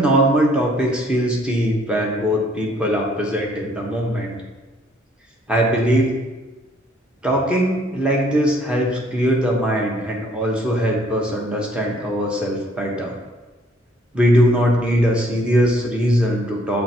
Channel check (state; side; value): normal; both; correlation 0.63